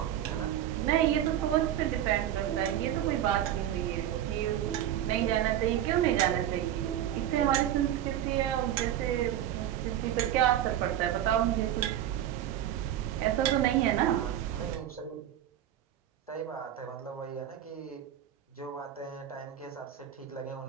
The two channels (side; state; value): left; quieter; 11.4 dB